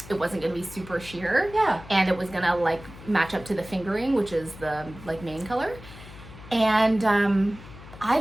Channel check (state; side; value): noise; left; hum, 17 dB below the sound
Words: it wasn't going to be super sheer. Yeah. And it was going to like match up to the fingering, which is the like main color. And I